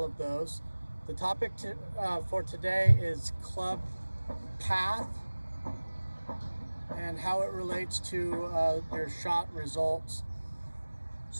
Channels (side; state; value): both; inverted; correlation -1.00